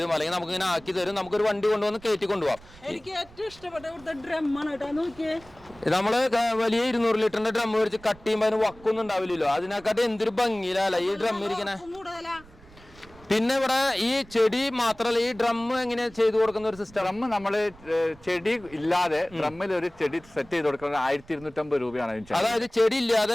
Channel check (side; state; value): right; noise; rumble, 23 dB below the sound